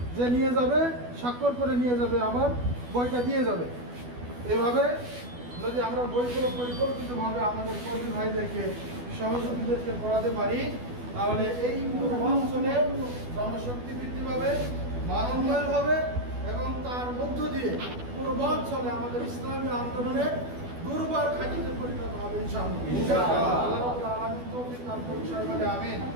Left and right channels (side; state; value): left; late; 12 ms